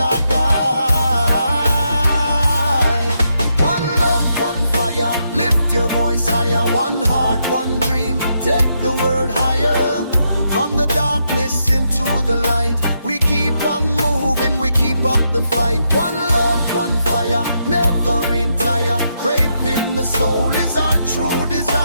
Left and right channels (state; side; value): inverted; both; correlation -0.80